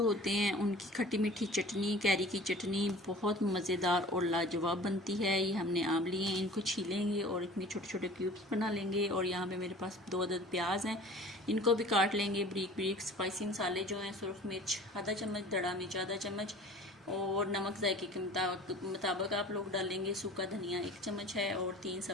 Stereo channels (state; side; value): normal; both; correlation 0.44